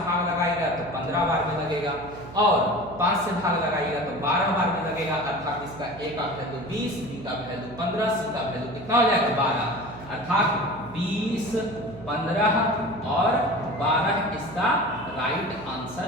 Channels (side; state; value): right; noise; hum, 16 dB below the sound